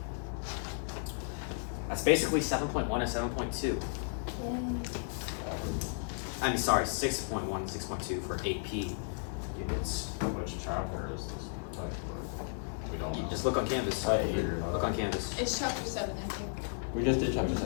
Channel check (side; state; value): right; silent; digital silence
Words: That's basically 7.1 and 7.2. I mean, sorry, 6.1 and 6.2 for AP units. Which chapter is this textbook? We don't know. Just look on Canvas. Right. Figure it out. Look on Canvas. It's chapter 7, I think. We just did chapter